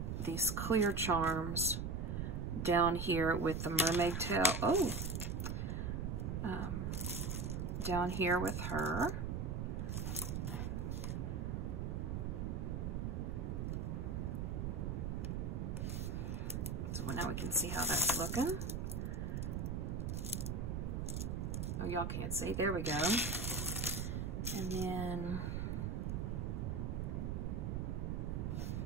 clear charms down here with the mermaid tail. Oh, down here with her. So now we can see how that's looking. Oh, y'all can't see. There we go. And then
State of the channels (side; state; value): right; noise; rumble, 1 dB below the sound